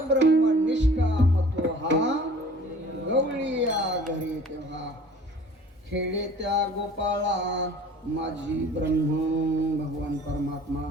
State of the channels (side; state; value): both; normal; correlation 0.48